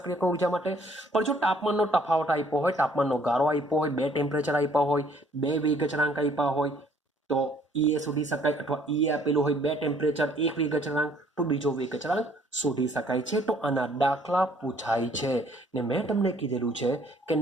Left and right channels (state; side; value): normal; both; correlation 0.61